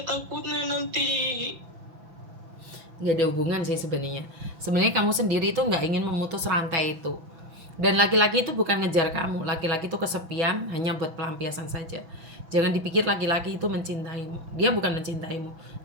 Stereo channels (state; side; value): late; left; 6.1 ms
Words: takutnya nanti. Nggak ada hubungan sih sebenarnya. Sebenarnya kamu sendiri itu nggak ingin memutus rantai itu. Dan laki-laki itu bukan ngejar kamu. Laki-laki itu kesepian hanya buat pelampiasan saja. Jangan dipikir laki-laki itu mencintaimu. Dia bukan mencintaimu,